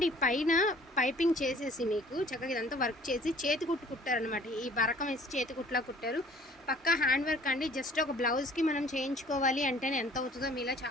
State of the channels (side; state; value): both; normal; correlation 0.53